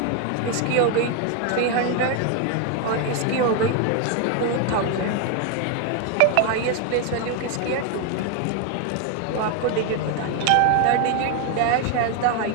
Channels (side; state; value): both; different; correlation 0.01